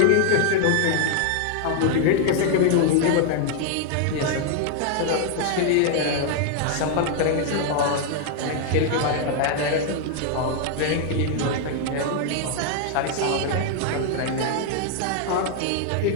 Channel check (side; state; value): both; different; correlation 0.00